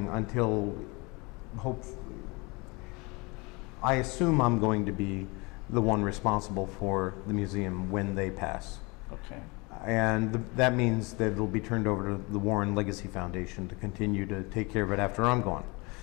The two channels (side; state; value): right; quieter; 27.2 dB